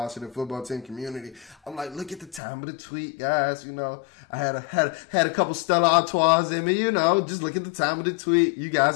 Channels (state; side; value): drops out; right; at 2.4 s